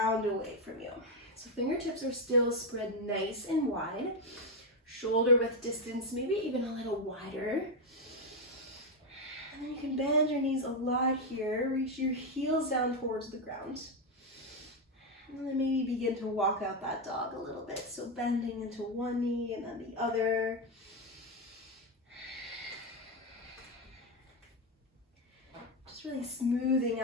away from you. So fingertips are still spread nice and wide, shoulder width distance, maybe even a little wider. And then you can bend your knees a lot here. Reach your heels down towards the ground. And then maybe begin to walk out that dog a little bit. So bending into one knee and then the other. Just really smoothing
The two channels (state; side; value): normal; both; correlation 0.06